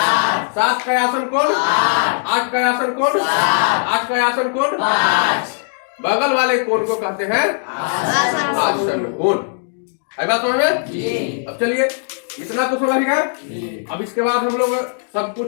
7 का आसन कोण 8 का आसन कोण 8 का आसन कोण। बगल वाले कोण को कहते हैं आसन कोण। है बात समझ में? अब चलिए इतना तो समझ गए। अब इसके बाद हम लोग सब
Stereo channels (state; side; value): silent; right; digital silence